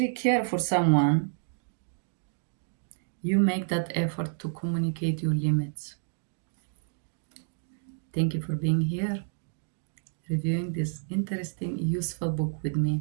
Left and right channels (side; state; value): left; silent; digital silence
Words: care for someone, you make that effort to communicate your limits. Thank you for being here, reviewing this interesting, useful book with me.